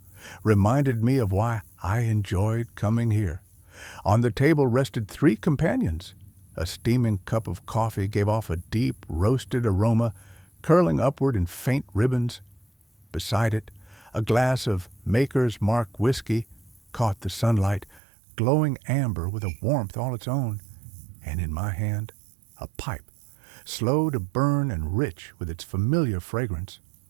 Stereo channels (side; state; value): left; drops out; at 18.0 s